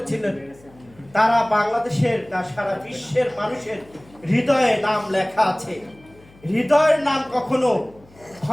তারা বাংলাদেশের না সারা বিশ্বের মানুষের হৃদয়ে নাম লেখা আছে। হৃদয়ের নাম কখনো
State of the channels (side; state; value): left; noise; hum, 27 dB below the sound